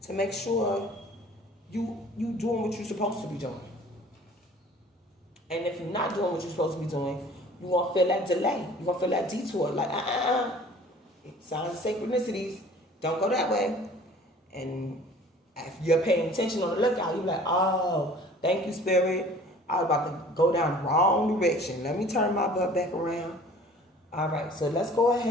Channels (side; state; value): both; normal; correlation 0.49